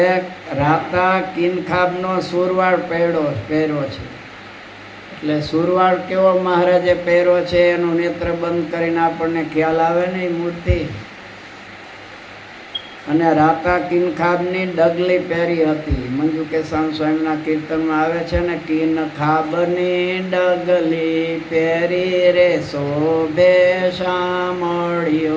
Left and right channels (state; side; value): identical; both; correlation 1.00